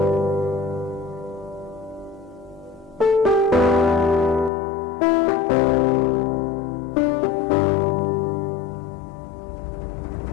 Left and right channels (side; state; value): right; drops out; at 4.5 s